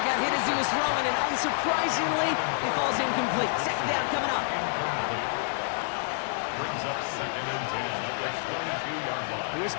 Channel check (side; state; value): right; silent; digital silence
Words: got hit as he was throwing, and unsurprisingly, he falls incomplete. 2nd down coming up. Brings up 2nd and 10 at the 22-yard line. Here's